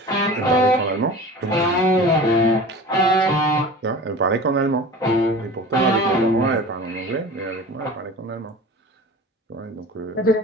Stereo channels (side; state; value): both; normal; correlation 0.37